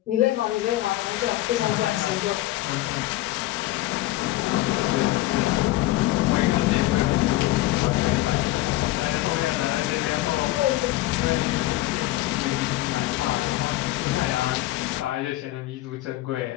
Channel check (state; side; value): quieter; right; 16.7 dB